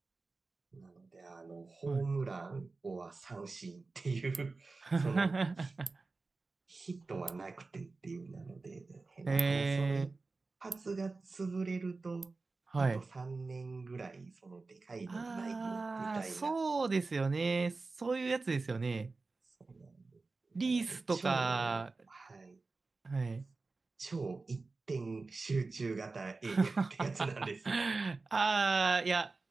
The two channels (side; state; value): left; quieter; 3.8 dB